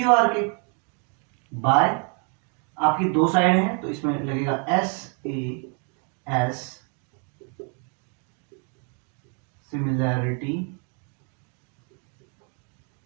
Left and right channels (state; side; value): quieter; left; 39.0 dB